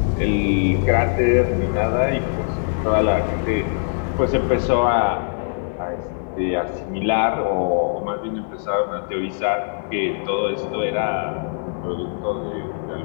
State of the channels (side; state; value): right; silent; digital silence